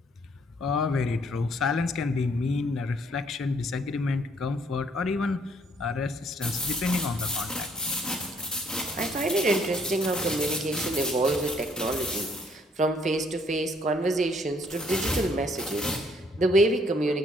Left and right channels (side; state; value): both; normal; correlation 0.66